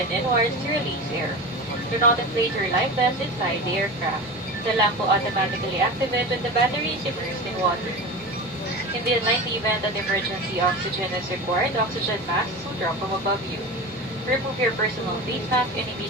inwards to release air. Do not inflate your life vest inside the aircraft. The lamp will automatically activate when the battery is immersed in water. In the unlikely event that emergency oxygen is required, oxygen masks will drop from above you. Remove your personal face mask and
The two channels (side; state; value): both; normal; correlation 0.29